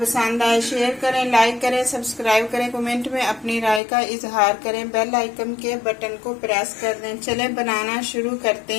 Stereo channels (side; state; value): right; drops out; at 3.8 s